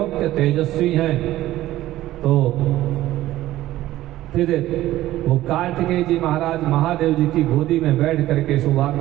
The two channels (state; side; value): quieter; left; 15.1 dB